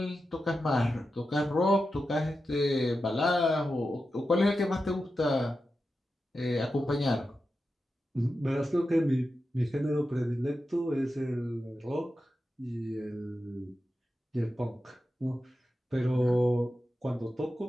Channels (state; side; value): normal; both; correlation 0.91